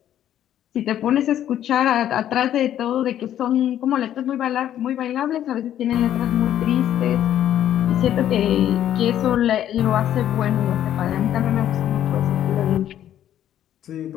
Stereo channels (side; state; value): right; quieter; 11.2 dB